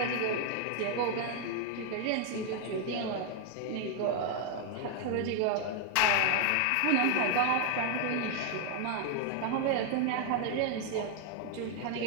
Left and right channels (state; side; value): different; both; correlation 0.01